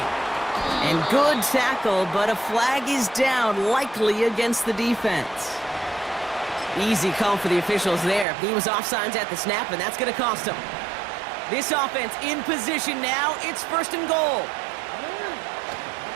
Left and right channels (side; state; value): left; drops out; at 8.2 s